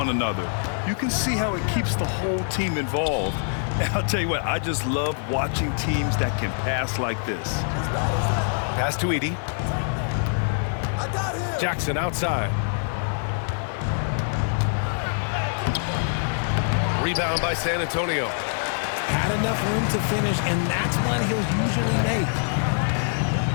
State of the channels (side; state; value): right; silent; digital silence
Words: another. You can see how it keeps the whole team involved. And I'll tell you what, I just love watching teams that can pass like this. Pass to Edey. Jackson outside. Rebound by San Antonio. Had enough room to finish, and that's one he'll usually make.